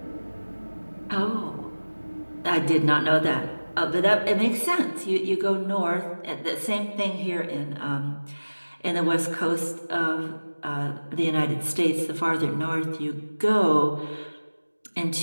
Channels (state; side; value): inverted; both; correlation -1.00